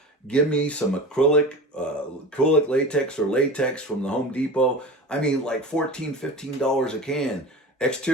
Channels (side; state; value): both; normal; correlation 0.33